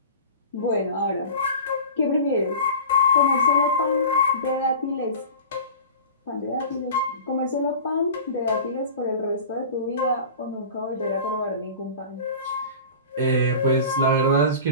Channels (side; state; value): both; inverted; correlation -0.36